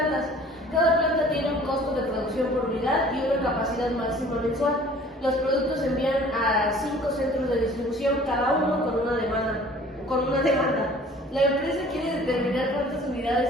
Cada planta tiene un costo de producción por unidad y una capacidad máxima mensual. Los productos se envían a 5 centros de distribución, cada uno con una demanda. La empresa quiere determinar cuántas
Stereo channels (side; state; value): both; normal; correlation 0.50